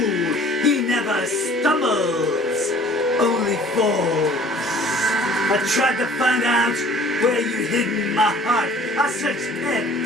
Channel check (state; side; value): normal; both; correlation 0.50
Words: He never stumbles, only falls. I tried to find out where you hid my heart. I searched